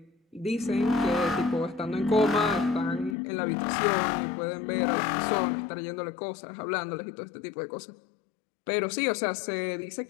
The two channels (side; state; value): right; drops out; at 3.2 s